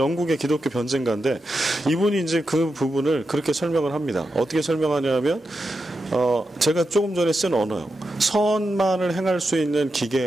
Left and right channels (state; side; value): normal; both; correlation 0.88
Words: 기독교 변증가인데 이분이 이제 그 부분을 그렇게 설명을 합니다. 어떻게 설명하냐면 제가 조금 전에 쓴 언어요. 선만을 행할 수 있는